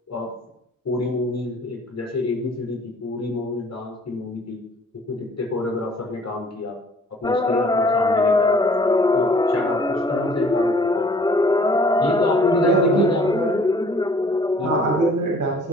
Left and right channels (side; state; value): both; normal; correlation 0.56